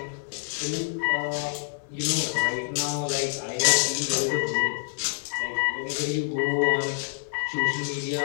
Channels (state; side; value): silent; right; 60 dB below the other